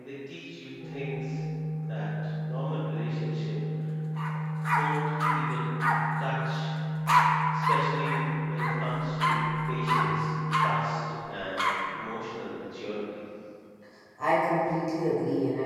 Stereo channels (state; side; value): identical; both; correlation 1.00